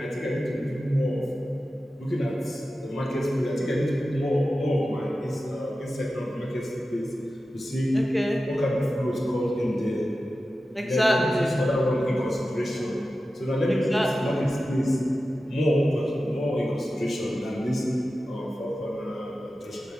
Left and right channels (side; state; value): both; normal; correlation 0.93